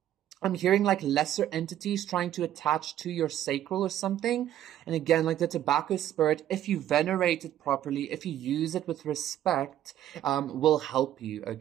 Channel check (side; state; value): left; quieter; 11.9 dB